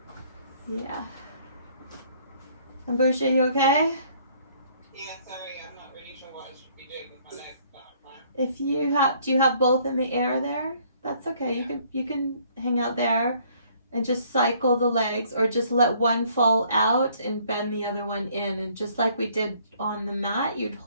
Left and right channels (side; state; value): both; inverted; correlation -0.61